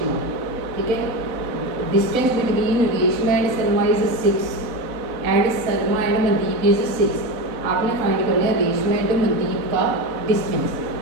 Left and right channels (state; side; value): late; left; 4.0 ms